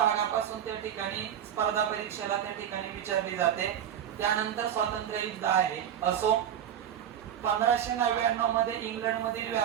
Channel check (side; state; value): left; quieter; 9.8 dB